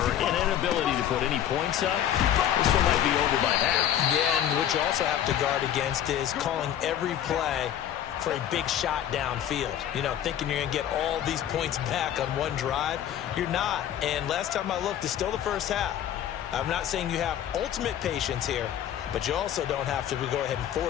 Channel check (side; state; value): right; quieter; 10.7 dB